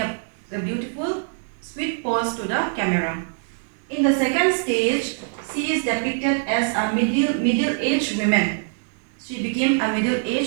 beautiful sweet pose to the camera. In the second stage, she is depicted as a middle-aged woman. She became a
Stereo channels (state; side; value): silent; left; digital silence